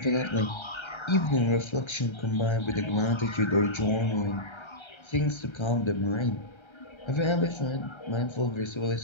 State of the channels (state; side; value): late; right; 1.3 ms